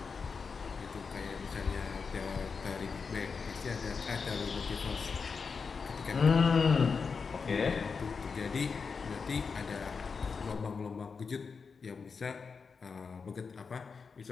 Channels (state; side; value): quieter; right; 5.3 dB